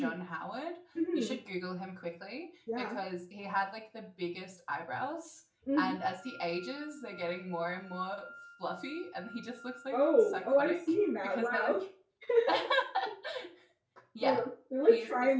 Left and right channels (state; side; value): identical; both; correlation 1.00